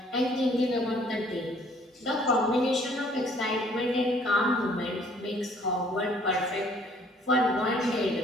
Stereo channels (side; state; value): both; normal; correlation 0.59